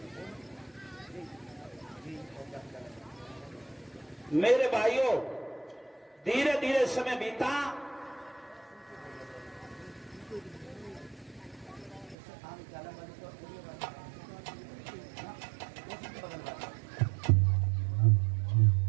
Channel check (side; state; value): left; drops out; at 12.2 s